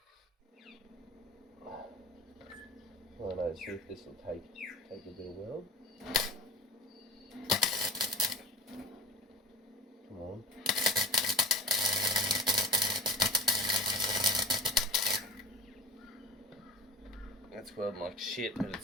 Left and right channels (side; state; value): both; normal; correlation 0.35